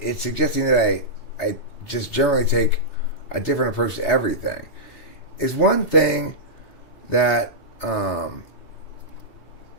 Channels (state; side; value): late; right; 2.8 ms